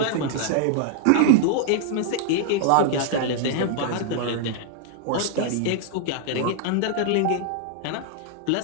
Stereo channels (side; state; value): both; different; correlation -0.01